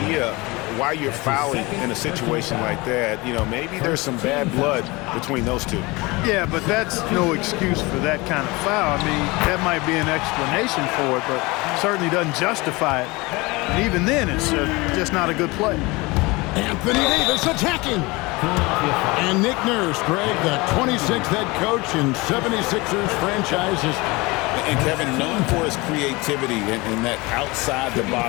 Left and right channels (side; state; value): right; quieter; 23.7 dB